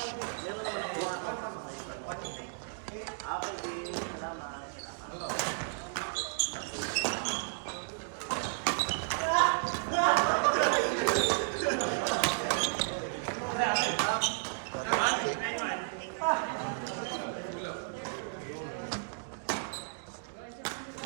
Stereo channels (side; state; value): left; silent; digital silence